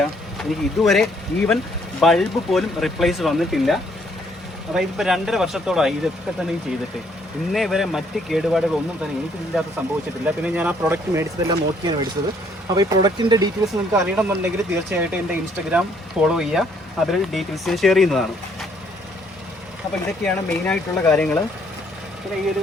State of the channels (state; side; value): normal; both; correlation 0.66